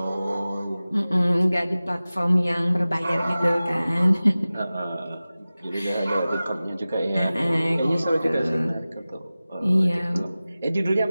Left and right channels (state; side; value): inverted; both; correlation -0.97